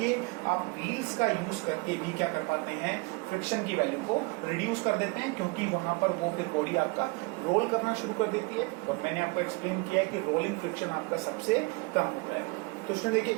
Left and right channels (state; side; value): quieter; left; 27.9 dB